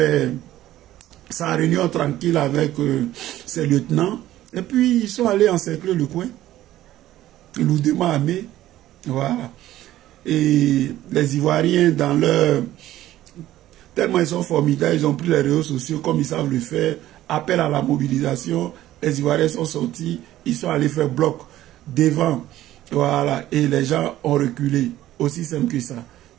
sa réunion tranquille avec ses lieutenants. Et puis, ils sont allés encercler le coin. Lourdement armés. Voilà. Et les Ivoiriens, dans leur... tellement ils sont formidables, ils ont pris les réseaux sociaux comme ils savent le faire. Appel à la mobilisation. Les Ivoiriens sont sortis. Ils sont allés faire bloc devant. Voilà. Et les gens ont reculé. Aussi simple que ça.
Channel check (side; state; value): left; quieter; 14.2 dB